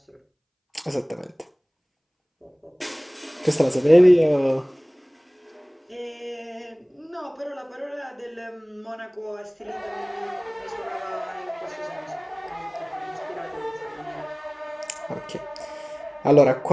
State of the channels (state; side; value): identical; both; correlation 1.00